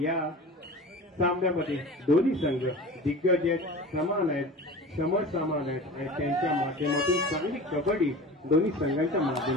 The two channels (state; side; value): normal; both; correlation 0.36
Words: या सामन्यामध्ये दोन्ही संघ दिग्गज आहेत, समान आहेत, समसमान आहेत आणि त्यांच्या माध्यमातून चांगली कबड्डी दोन्ही संघांच्या